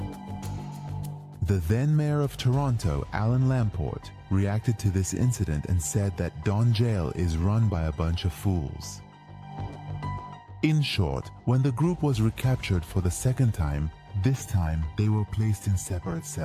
The then mayor of Toronto, Alan Lamport, reacted to this incident and said that Don Jail is run by a bunch of fools. In short, when the group was recaptured for the second time, this time they were placed in separate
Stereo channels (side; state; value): both; identical; correlation 1.00